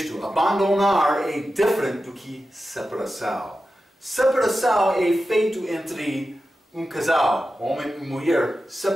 abandonar é diferente do que separação. Separação é feito entre um casal, homem e mulher.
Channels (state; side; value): normal; both; correlation 0.92